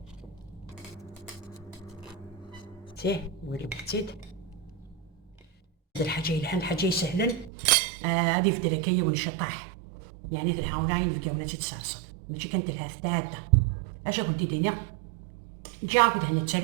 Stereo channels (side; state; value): left; drops out; at 7.5 s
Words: تيه ولي بتيد هاد الحاجه الحين حاجه سهلا هادي في دركيه ونشطح يعني تنحاول عين في قونا تتصرصد ماشي كانت لها ثلاثه اش كنت دينا جا كنت هنا